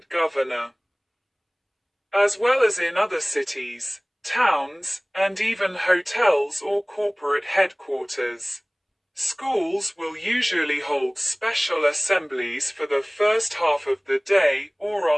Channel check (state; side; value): identical; both; correlation 1.00